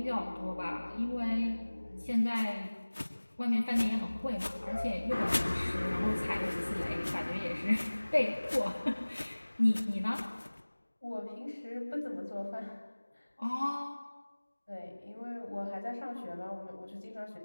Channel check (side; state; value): both; inverted; correlation -1.00